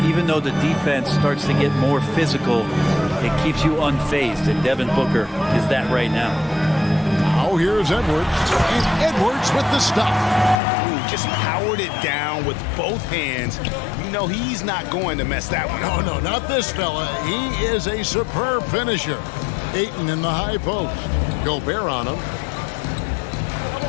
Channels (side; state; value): right; drops out; at 10.6 s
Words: even though the defense starts to get more physical, it keeps you unfazed, and Devin Booker is that right now. Now here's Edwards, and Edwards with the stuff. Ooh, just powered it down with both hands. You know he's not going to mess that one up. No, not this fella. He is a superb finisher. Ayton in the high post. Gobert on him.